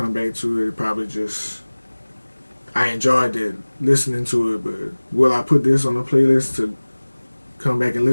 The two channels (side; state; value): both; inverted; correlation -1.00